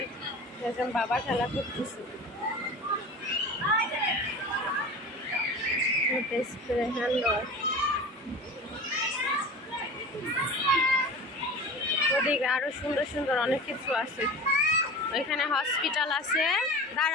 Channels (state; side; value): normal; both; correlation 0.35